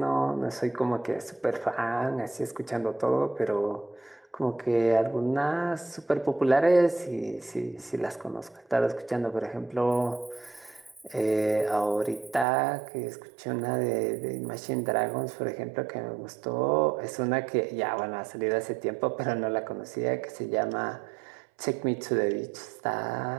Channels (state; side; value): drops out; left; at 12.5 s